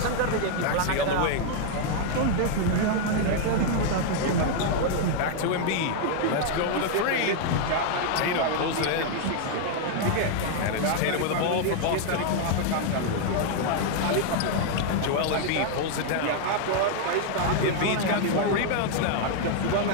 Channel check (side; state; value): both; different; correlation 0.00